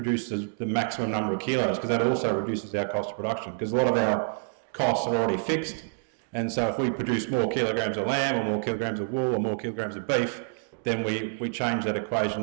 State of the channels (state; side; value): silent; left; digital silence